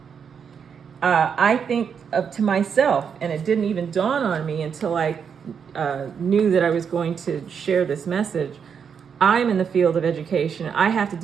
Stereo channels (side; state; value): left; quieter; 6.9 dB